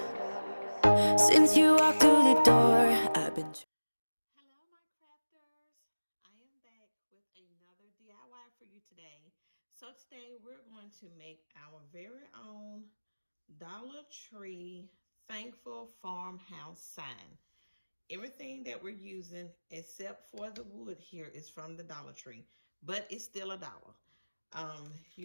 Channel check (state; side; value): inverted; both; correlation -1.00